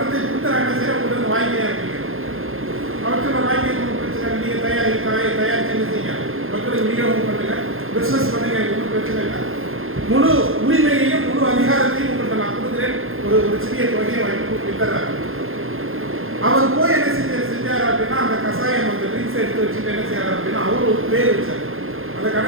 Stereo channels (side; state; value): left; late; 0.60 ms